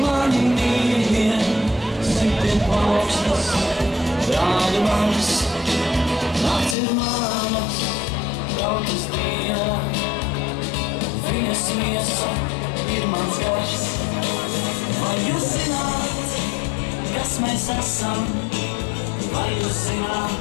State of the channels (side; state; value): right; drops out; at 6.8 s